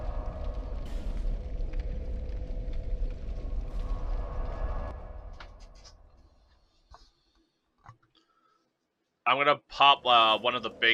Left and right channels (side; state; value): both; identical; correlation 1.00